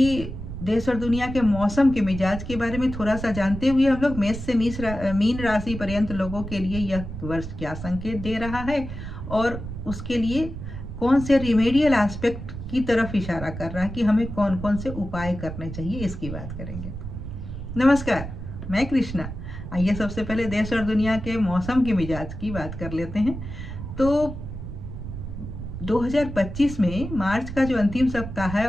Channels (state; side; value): noise; right; rumble, 8 dB below the sound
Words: देश और दुनिया के मौसम के मिजाज के बारे में थोड़ा सा जानते हुए हम लोग मेष से मीन राशि पर्यंत लोगों के लिए यह वर्ष क्या संकेत दे रहा है और उसके लिए कौन से रिमेडियल एस्पेक्ट की तरफ इशारा कर रहा है कि हमें कौन कौन से उपाय करने चाहिए, इसकी बात करेंगे। नमस्कार, मैं कृष्णा। आइए सबसे पहले देश और दुनिया के मौसम के मिजाज की बात कर लेते हैं। तो 2025 में मार्च का जो अंतिम सप्ताह है